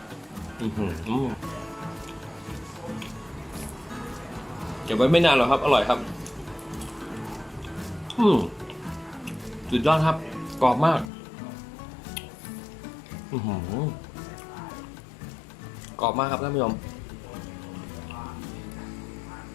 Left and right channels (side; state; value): right; drops out; at 11.1 s